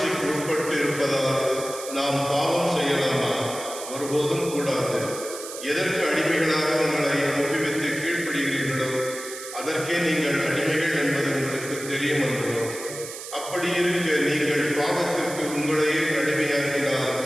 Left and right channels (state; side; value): noise; right; hiss, 11 dB below the sound